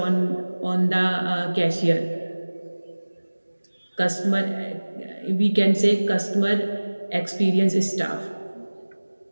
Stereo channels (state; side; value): inverted; both; correlation -1.00